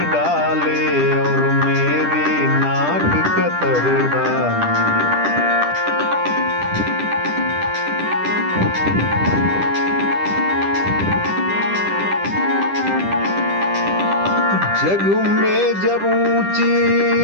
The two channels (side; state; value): left; late; 10 ms